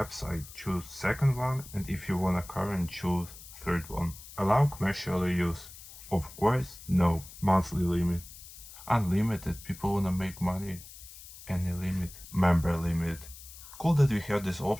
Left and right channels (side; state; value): left; noise; hiss, 16 dB below the sound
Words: choose second one, and if you want a current, choose third one. Allow commercial use. Of course, no. Monthly limit. Unlimited, people wanna make money. Any limit. Member limit. Cool that we have this